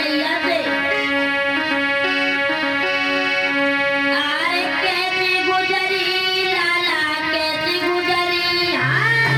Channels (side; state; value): both; identical; correlation 1.00